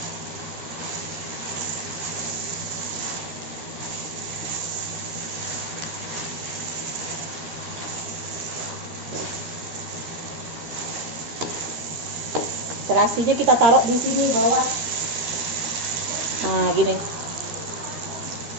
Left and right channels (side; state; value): left; late; 13 ms